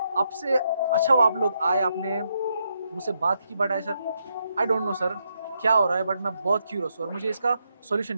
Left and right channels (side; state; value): both; inverted; correlation -0.80